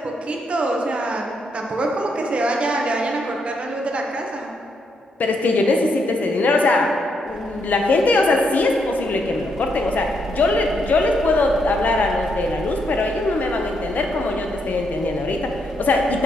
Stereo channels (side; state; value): both; normal; correlation 0.77